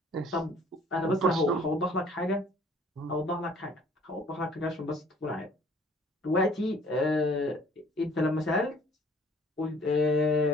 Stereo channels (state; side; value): normal; both; correlation 0.56